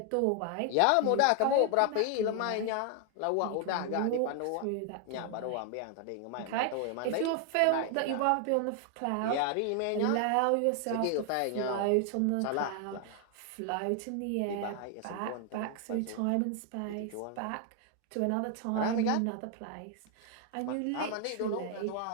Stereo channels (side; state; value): both; different; correlation 0.00